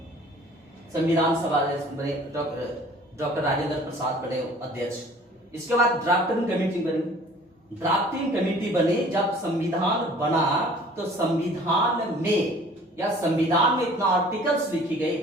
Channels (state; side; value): normal; both; correlation 0.50